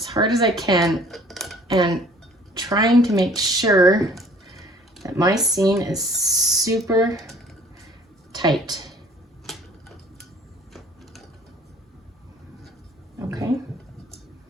hard as I can and trying to make sure that my seam is super tight. Okay.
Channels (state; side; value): normal; both; correlation 0.53